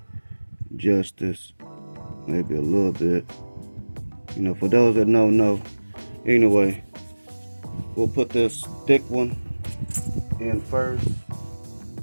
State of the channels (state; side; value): inverted; both; correlation -1.00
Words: justice, maybe a little bit. You know, for those that don't know, anyway, we'll put this thick one in first,